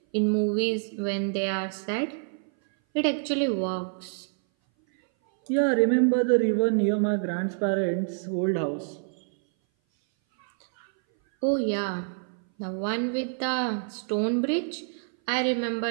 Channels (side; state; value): left; silent; 58 dB below the other